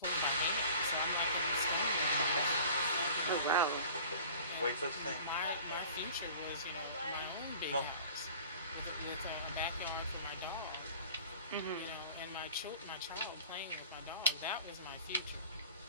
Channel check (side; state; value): both; inverted; correlation -0.44